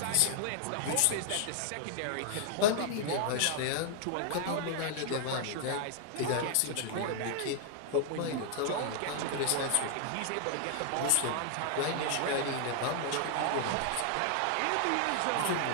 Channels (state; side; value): different; both; correlation 0.00